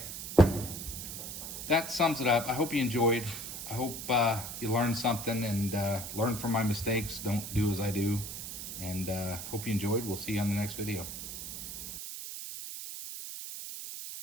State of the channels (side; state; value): right; noise; hiss, 7 dB below the sound